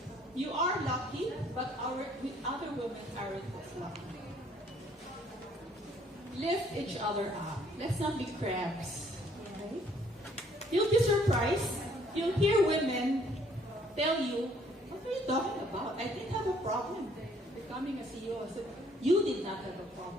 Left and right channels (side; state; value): both; normal; correlation 0.63